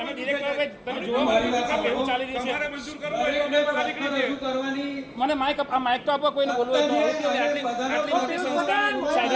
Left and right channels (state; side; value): identical; both; correlation 1.00